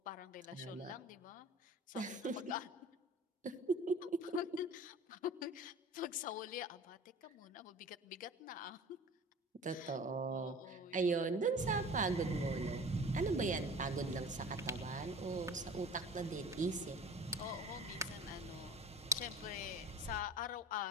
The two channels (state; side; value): normal; both; correlation 0.41